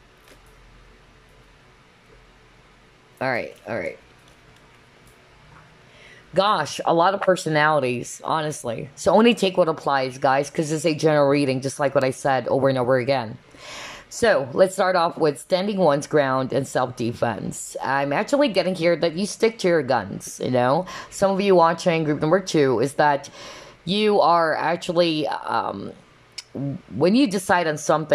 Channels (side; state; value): both; identical; correlation 1.00